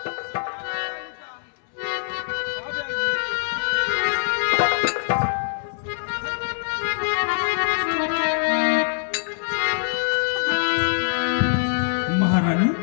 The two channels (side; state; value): right; silent; 63 dB below the other